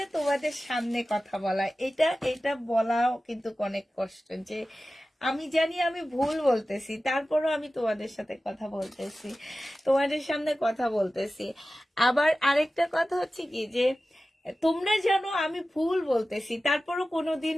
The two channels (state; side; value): normal; both; correlation 0.95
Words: তোমাদের সামনে কথা বলা, এটা এটা বলাও কিন্তু অনেক কষ্ট। যে আমি জানি আমি ভুল বলতেছি, তারপরও আমি তোমাদের সাথে কথা বলতেছি, তোমাদের সামনে কথা বলতেছি। আবার আরেকটা কথা হচ্ছে কি, যে তোমরা জানো আমি ভুল বলতেছি, তারপরও কোনোদিন